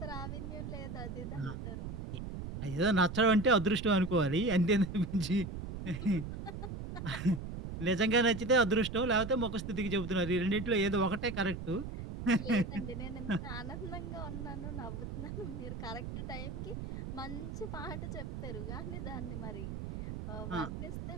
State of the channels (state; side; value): noise; right; rumble, 7 dB below the sound